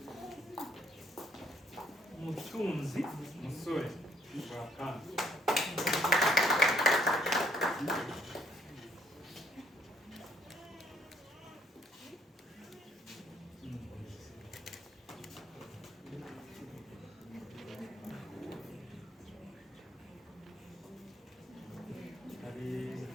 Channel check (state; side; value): normal; both; correlation 0.68